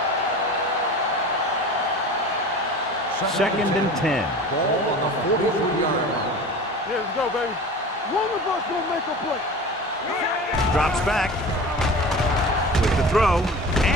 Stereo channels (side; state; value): both; normal; correlation 0.36